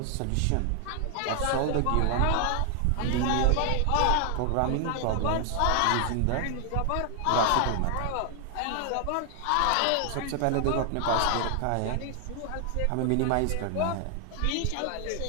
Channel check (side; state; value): both; different; correlation 0.00